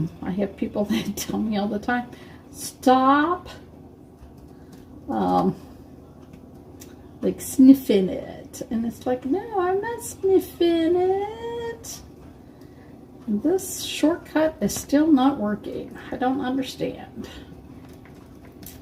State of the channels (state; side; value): identical; both; correlation 1.00